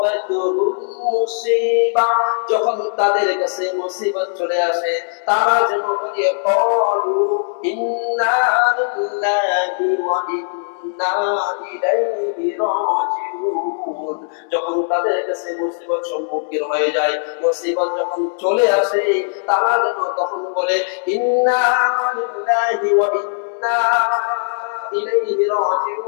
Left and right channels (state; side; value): silent; right; digital silence